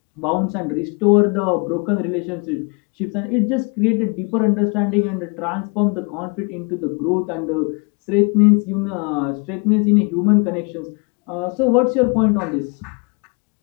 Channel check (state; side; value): quieter; right; 32.9 dB